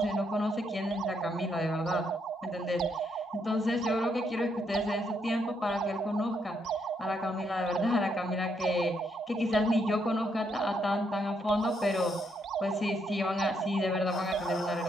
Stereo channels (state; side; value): normal; both; correlation 0.76